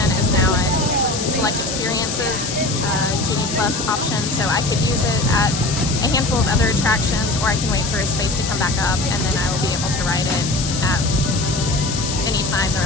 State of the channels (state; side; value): noise; left; hiss, 5 dB below the sound